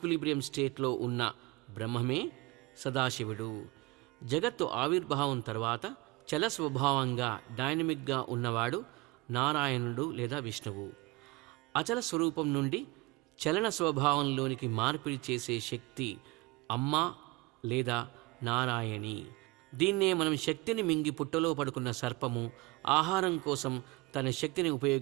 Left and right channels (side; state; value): left; quieter; 21.6 dB